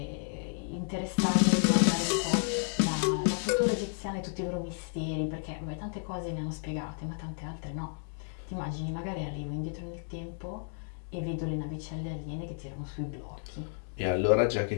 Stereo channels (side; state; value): right; silent; 56 dB below the other